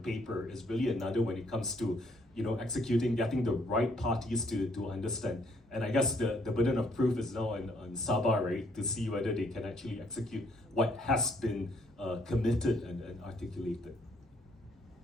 paper, is really another when it comes to executing, getting the right parties to understand. And I guess the burden of proof is now on Sabah, right, to see whether they can actually execute what has been committed and articulated.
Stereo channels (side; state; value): both; normal; correlation 0.67